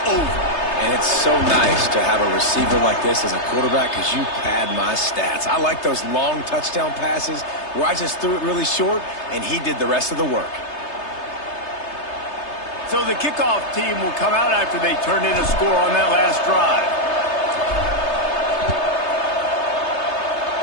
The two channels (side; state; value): right; late; 3.3 ms